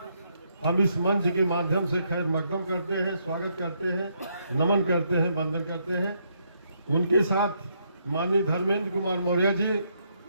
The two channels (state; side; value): inverted; both; correlation -0.75